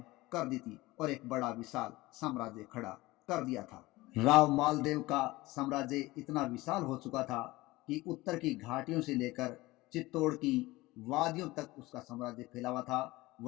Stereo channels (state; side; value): quieter; right; 19.9 dB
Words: कर दी थी और एक बड़ा विशाल साम्राज्य खड़ा कर दिया था। राव मालदेव का साम्राज्य इतना विशाल हो चुका था कि उत्तर की घाटियों से लेकर चित्तौड़ की वादियों तक उसका साम्राज्य फैला हुआ था।